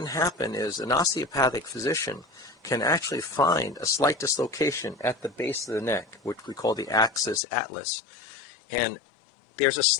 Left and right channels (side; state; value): right; drops out; at 7.4 s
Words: happen is an osteopathic physician can actually find a slight dislocation at the base of the neck, which we call the axis atlas, and there's a